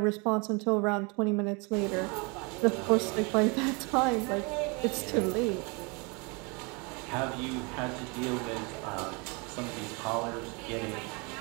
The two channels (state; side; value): quieter; left; 30.5 dB